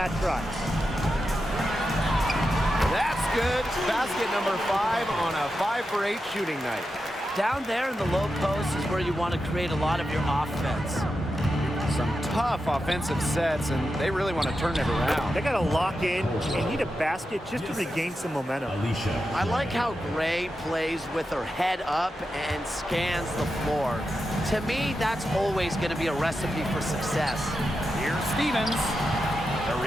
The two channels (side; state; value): both; normal; correlation 0.89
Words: try. That's good. Basket number 5 on a 5 for 8 shooting night. Down there in the low post is where you want to create a lot of your offense. Some tough offensive sets, and they really want to turn it around. They got to lock in and need a basket just to regain some momentum. Alicia. I like how Gray plays with her head up and scans the floor. To me, that's always going to be a recipe for success. Here's Stevens. The